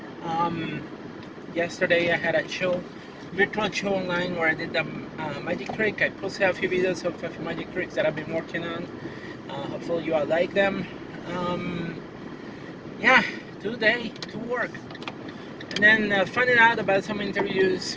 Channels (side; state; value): both; identical; correlation 1.00